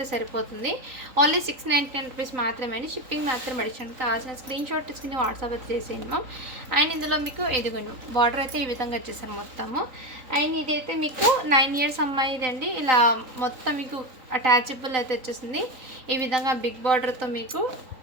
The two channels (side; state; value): left; late; 3.9 ms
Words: సరిపోతుంది. ఓన్లీ 699 రూపీస్ మాత్రమే అండి. షిప్పింగ్ మాత్రం అడిషనల్. కావాల్సిన స్క్రీన్ షాట్ తీసుకుని వాట్సాప్ అయితే చేసేయండి మ్యామ్. అండ్ ఇందులో మీకు ఎదుగును బార్డర్ అయితే ఈ విధంగా వచ్చేసారు మొత్తము. అండ్ ఇదైతే మీకు 9 ఇయర్స్ అమ్మాయిది అండి. ఇలా మొత్తం మీకు అటాచబుల్ అయితే వచ్చేసింది. ఈ విధంగా బిగ్ బార్డర్తో మీకు